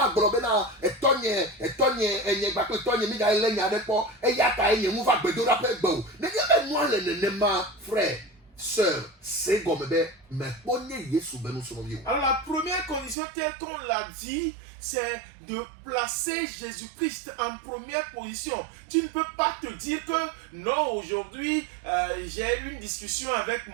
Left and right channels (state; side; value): drops out; left; at 13.2 s